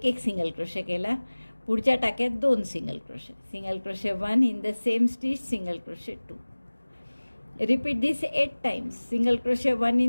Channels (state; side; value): inverted; both; correlation -1.00